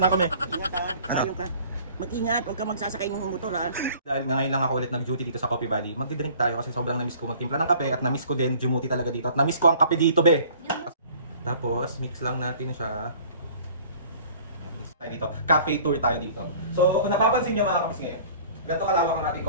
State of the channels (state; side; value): inverted; both; correlation -0.50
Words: kami. Ingat ha, tayo ka. Mag-ingat, huwag ka magsasakay ng motor ha. Dahil ngayon lang ako ulit nag-duty dito sa Coffee Valley, magdi-drink tayo kasi sobrang na-miss ko magtimpla ng kape at na-miss ko din dumuti talaga dito at na-miss ko ang kape dito, be. Tapos, mix lang natin siya. Mix tayo dito. Cafe tour tayo dito. So, kung napapansin nyo mga kapis ngayon, ganito kalawak ang ating